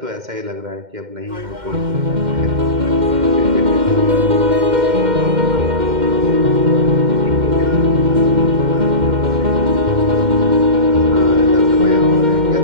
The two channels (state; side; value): late; left; 2.1 ms